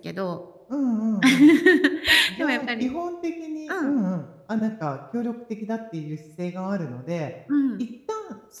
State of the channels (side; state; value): both; identical; correlation 1.00